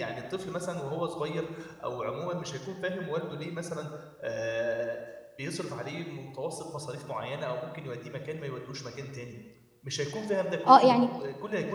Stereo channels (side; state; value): both; identical; correlation 1.00